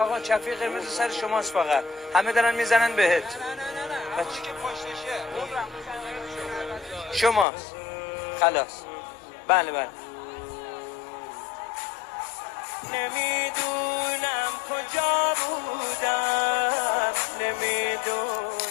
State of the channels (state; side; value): drops out; right; at 7.5 s